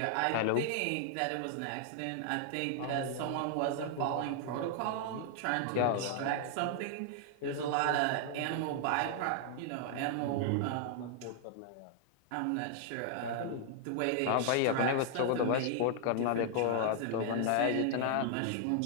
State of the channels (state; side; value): different; both; correlation 0.00